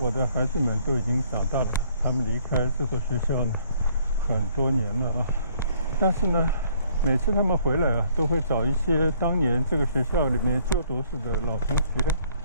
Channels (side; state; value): both; inverted; correlation -0.62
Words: 的孩子们都已经长大了，他们离开这所学校呢很多年了啊。但是呢，每次他们回来啊，都会找一些当年这个学校里面就读时的老同学，